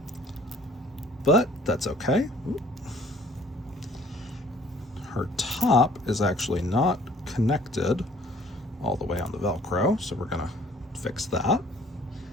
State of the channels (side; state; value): both; normal; correlation 0.56